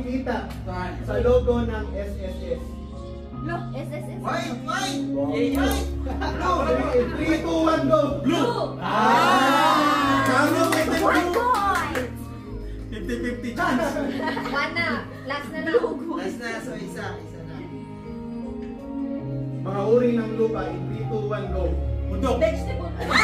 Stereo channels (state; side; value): identical; both; correlation 1.00